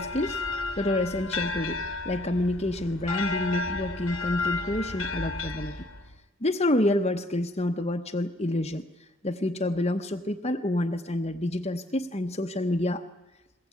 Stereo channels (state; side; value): normal; both; correlation 0.63